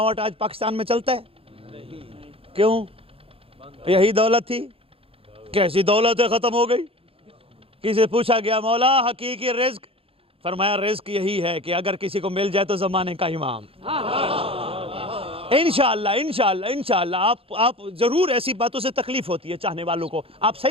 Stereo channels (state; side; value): late; left; 0.27 ms